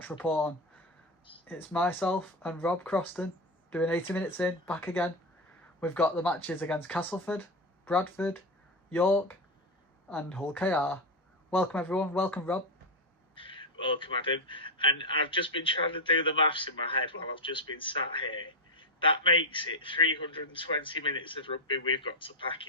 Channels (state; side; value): normal; both; correlation 0.10